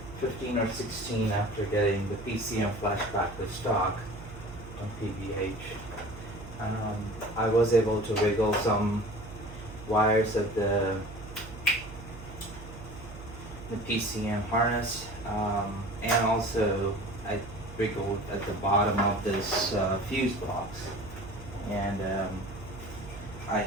15 or 16 after getting the PCM flashback to stock on PVH. I was able to wiggle some wires of the PCM harness, and also I wiggled at the bottom of this fuse box, and I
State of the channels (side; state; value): right; noise; hum, 14 dB below the sound